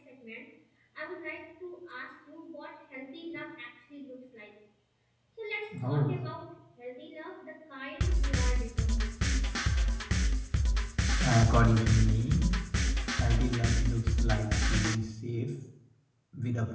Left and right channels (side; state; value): both; identical; correlation 1.00